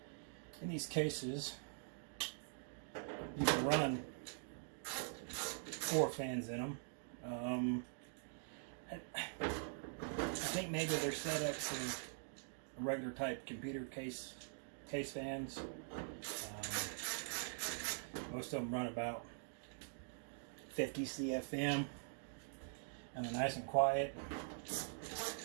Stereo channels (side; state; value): left; silent; digital silence